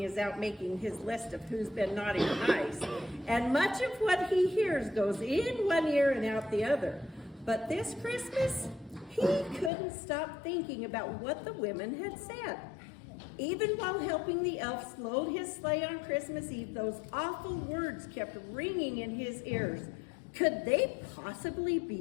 is out making his list of who's been naughty or nice, and much of what he hears goes in one ear and out the other. But this Christmas, he couldn't stop thinking about what the women had said. Even while helping the elves load his sleigh on Christmas Eve, those awful words kept ringing in his ears. Could they possibly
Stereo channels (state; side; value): drops out; right; at 9.7 s